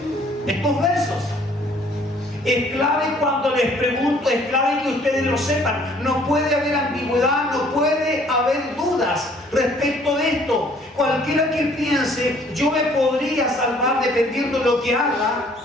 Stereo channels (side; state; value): both; normal; correlation 0.59